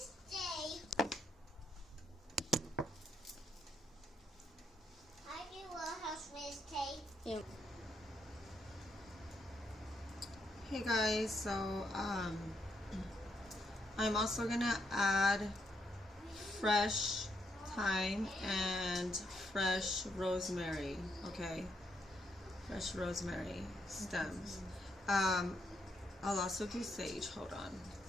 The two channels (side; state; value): both; normal; correlation 0.77